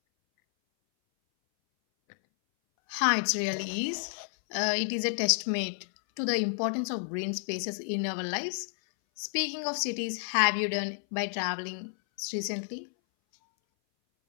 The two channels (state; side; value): silent; right; 58 dB below the other